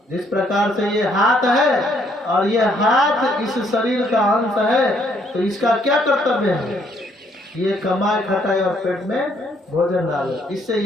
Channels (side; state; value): both; normal; correlation 0.68